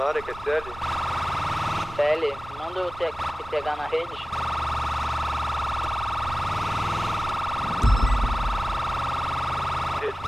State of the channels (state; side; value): normal; both; correlation 0.97